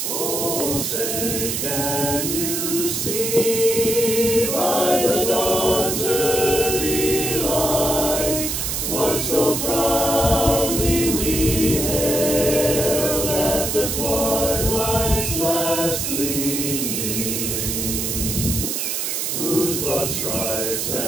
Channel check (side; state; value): right; noise; hiss, 1 dB below the sound